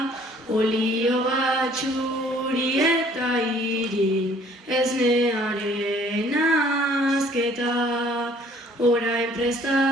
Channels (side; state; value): both; normal; correlation 0.57